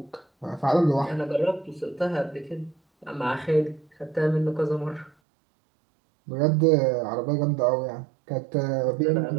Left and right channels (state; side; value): drops out; left; at 5.1 s